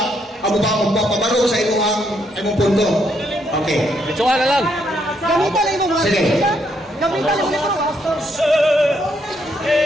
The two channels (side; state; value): both; normal; correlation 0.74